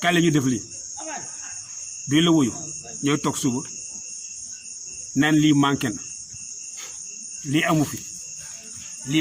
kaay la ñu def lii duñ la wuyu ñooy toog suba naan lii manqué na lii amu fi lii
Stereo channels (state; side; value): identical; both; correlation 1.00